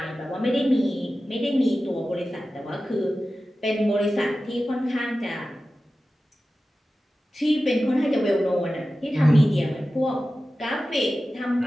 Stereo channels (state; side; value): normal; both; correlation 0.94